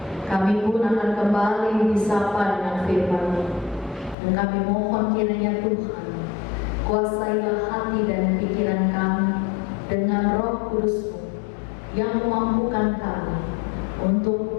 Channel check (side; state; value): right; drops out; at 4.2 s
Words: kami pun akan kembali disapa dengan firman-Mu. Dan kami mohon kiranya Tuhan, kuasailah hati dan pikiran kami dengan Roh Kudus-Mu yang memampukan kami untuk